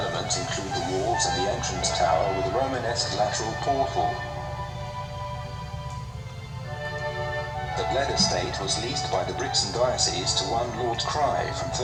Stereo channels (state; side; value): identical; both; correlation 1.00